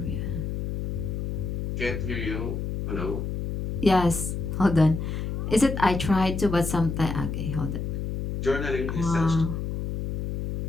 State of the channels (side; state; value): left; noise; hum, 3 dB below the sound